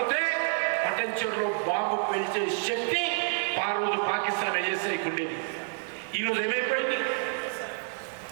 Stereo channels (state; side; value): silent; left; 59 dB below the other